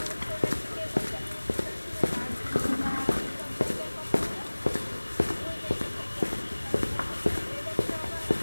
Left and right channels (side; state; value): both; inverted; correlation -1.00